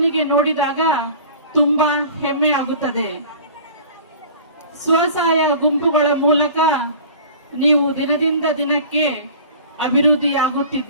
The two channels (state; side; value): inverted; both; correlation -0.43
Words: ನೋಡಿದಾಗ ತುಂಬಾ ಹೆಮ್ಮೆ ಆಗುತ್ತದೆ. ಸ್ವಸಹಾಯ ಗುಂಪುಗಳ ಮೂಲಕ ನೀವು ದಿನದಿಂದ ದಿನಕ್ಕೆ